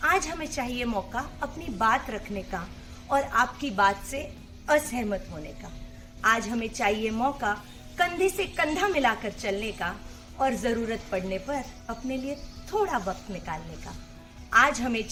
आज हमें चाहिए मौका अपनी बात रखने का और आपकी बात से असहमत होने का. आज हमें चाहिए मौका कंधे से कंधा मिलाकर चलने का और जरूरत पड़ने पर अपने लिए थोड़ा वक्त निकालने का. आज हमें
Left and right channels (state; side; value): identical; both; correlation 1.00